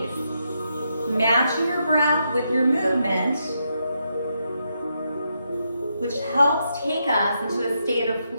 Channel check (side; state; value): both; inverted; correlation -0.81